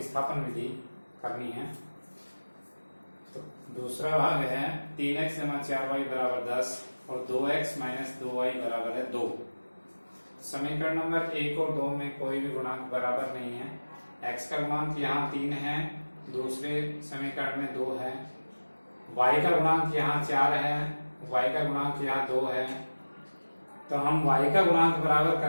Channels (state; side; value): inverted; both; correlation -1.00